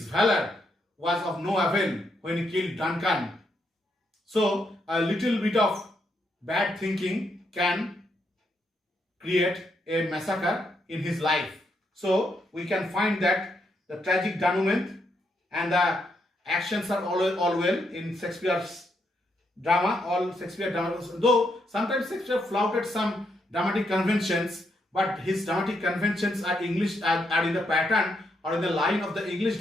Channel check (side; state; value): both; normal; correlation 0.79